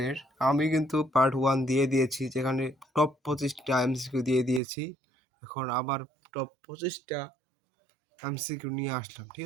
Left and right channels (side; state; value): left; drops out; at 4.6 s